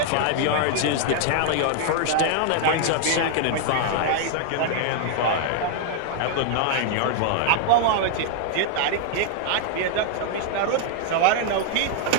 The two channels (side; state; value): both; different; correlation 0.00